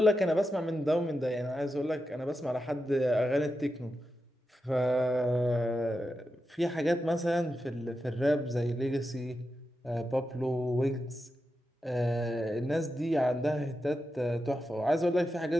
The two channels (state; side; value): normal; both; correlation 0.89